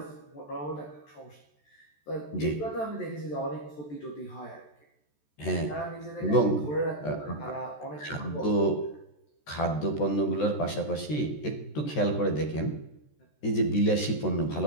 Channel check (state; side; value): late; right; 14 ms